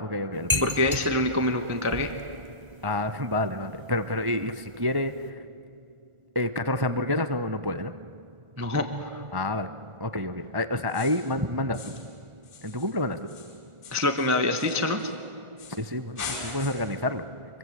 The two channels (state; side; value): late; left; 1.4 ms